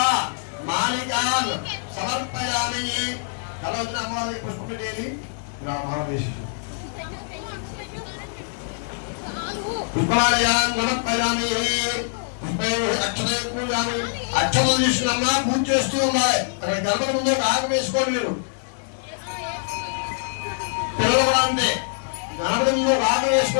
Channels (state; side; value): silent; right; digital silence